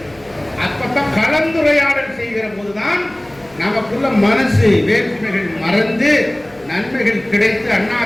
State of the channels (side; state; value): right; noise; hum, 26 dB below the sound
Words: அப்பதான் கலந்துரையாடல் செய்கிற போதுதான் நமக்குள்ள மனசு வேற்றுமைகள் மறந்து நன்மைகள் கிடைத்து